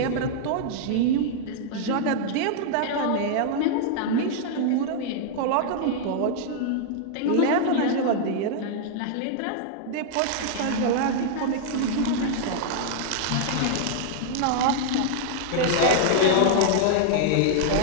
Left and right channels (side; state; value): both; different; correlation -0.01